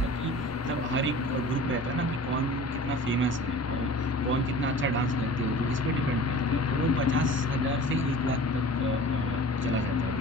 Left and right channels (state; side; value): normal; both; correlation 0.41